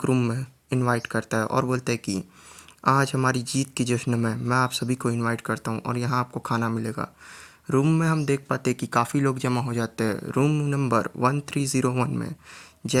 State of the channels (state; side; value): identical; both; correlation 1.00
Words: रूम में इनवाइट करता है और बोलता है कि आज हमारी जीत के जश्न में मैं आप सभी को इनवाइट करता हूँ और यहाँ आपको खाना मिलेगा। रूम में हम देख पाते हैं कि काफ़ी लोग जमा हो जाते हैं। रूम नंबर 1301 में